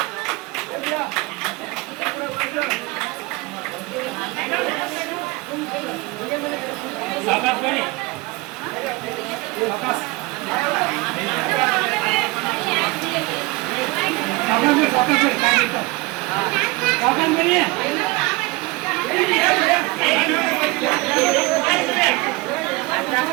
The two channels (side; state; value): left; quieter; 23.0 dB